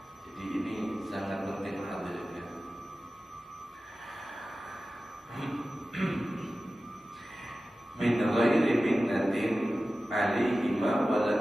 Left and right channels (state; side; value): normal; both; correlation 0.95